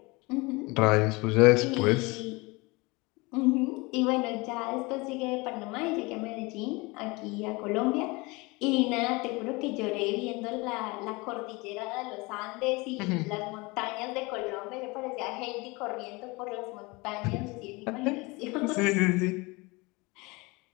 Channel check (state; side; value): quieter; right; 25.2 dB